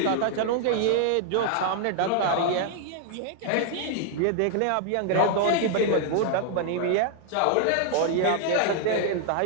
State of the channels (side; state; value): both; different; correlation 0.00